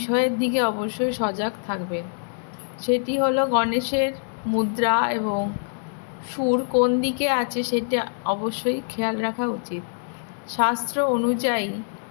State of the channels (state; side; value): silent; right; digital silence